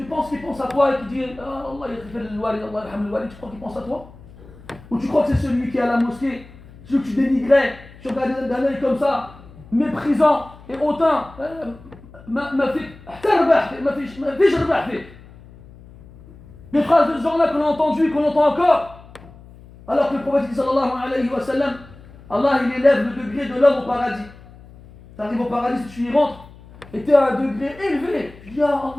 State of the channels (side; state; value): left; noise; hum, 21 dB below the sound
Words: penses qu'il pense à toi et qu'il dit ah, Allah yaghfir al-walid, Allah yarham al-walid, tu crois qu'il pense à toi? Ou tu crois que c'est celui qui est à la mosquée, celui que tu dénigrais, tu regardes d'un œil comme ça, méprisant et hautain, des phrases de ce genre-là qu'on a entendues et qu'on entend encore. Alors que le prophète sallallahu alayhi wa sallam, Allah il élève le degré de l'homme au paradis. Tu arrives au paradis, si tu y rentres, et tu es à un degré élevé. Tu dis ah